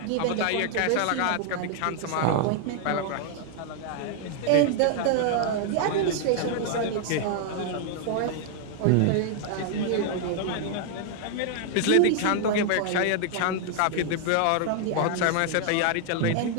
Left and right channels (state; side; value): different; both; correlation 0.00